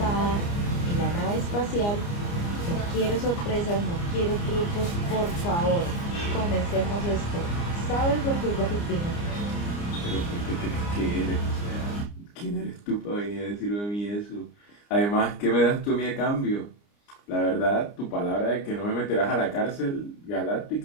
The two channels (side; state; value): right; late; 29 ms